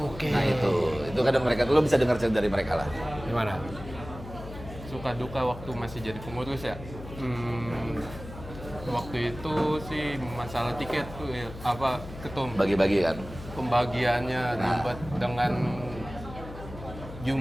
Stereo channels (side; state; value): left; noise; hum, 13 dB below the sound